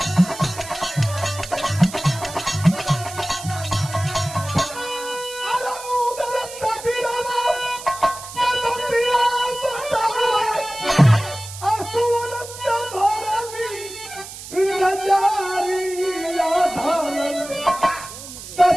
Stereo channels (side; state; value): right; noise; hiss, 13 dB below the sound